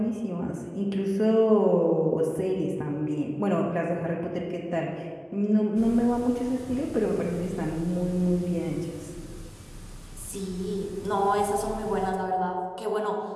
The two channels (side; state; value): both; identical; correlation 1.00